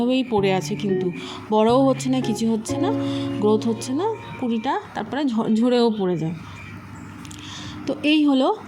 পড়ে আছে, কিন্তু বড়ও হচ্ছে না, কিছু হচ্ছে না, গ্রোথ হচ্ছে না, কুঁড়িটা তারপরে ঝরেও পড়ে যায়। তো এই হলো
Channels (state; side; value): identical; both; correlation 1.00